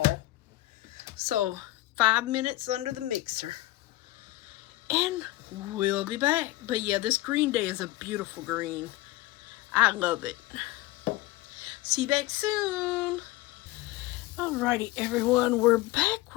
So 5 minutes under the mixer. And we'll be back. But yeah, this Green Day is a beautiful green. I love it. See you back soon. Alrighty, everyone. We're back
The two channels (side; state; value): right; quieter; 17.9 dB